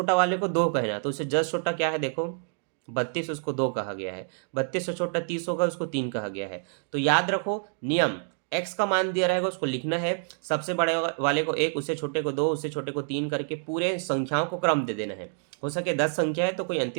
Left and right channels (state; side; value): silent; left; 60 dB below the other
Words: वाले को 2 कहना। तो उससे जस्ट छोटा क्या है, देखो 32, उसको 2 कहा गया है। 32 से छोटा 30 होगा, उसको 3 कहा गया है। तो याद रखो नियम, एक्स का मान दिया रहेगा उसको लिखना है, सबसे बड़े वाले को 1, उससे छोटे को 2, उससे छोटे को 3 करके पूरे संख्याओं को क्रम दे देना है। हो सके 10 संख्या है तो कोई